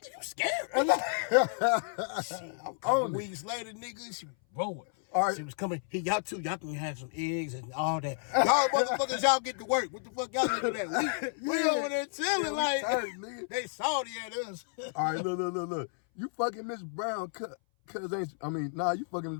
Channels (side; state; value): right; silent; 57 dB below the other